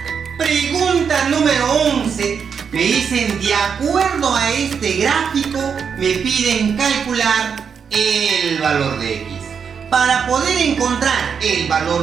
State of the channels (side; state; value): left; quieter; 6.7 dB